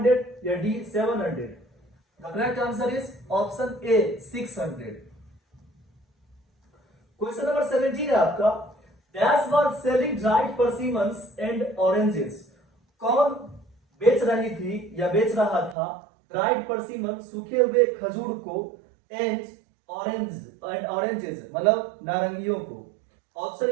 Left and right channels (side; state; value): left; drops out; at 15.8 s